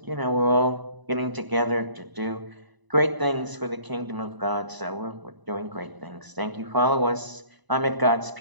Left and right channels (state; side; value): late; left; 1.0 ms